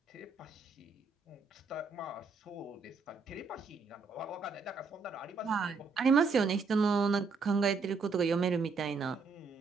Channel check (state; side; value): quieter; left; 4.5 dB